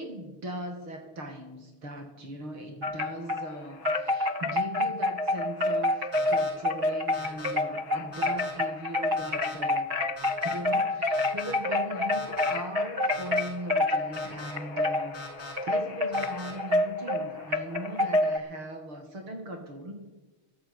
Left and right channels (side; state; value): left; late; 6.2 ms